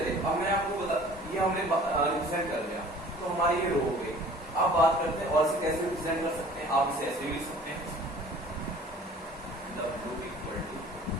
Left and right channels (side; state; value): both; normal; correlation 0.48